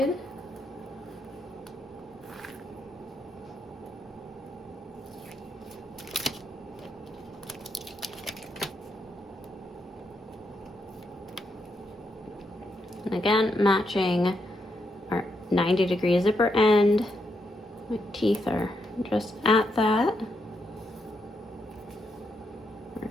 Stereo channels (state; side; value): normal; both; correlation 0.80